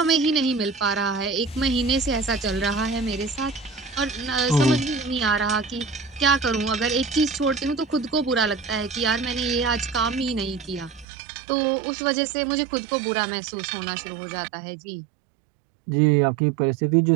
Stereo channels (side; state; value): left; drops out; at 11.1 s